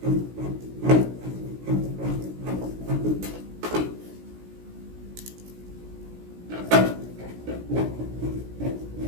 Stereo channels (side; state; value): left; late; 16 ms